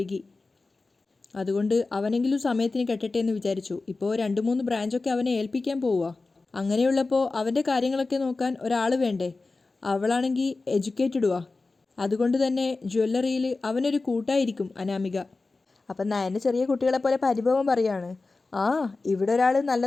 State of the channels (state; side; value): quieter; right; 3.6 dB